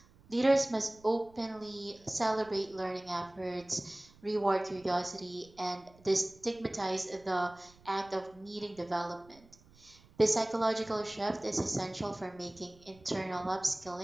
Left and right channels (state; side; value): noise; right; rumble, 26 dB below the sound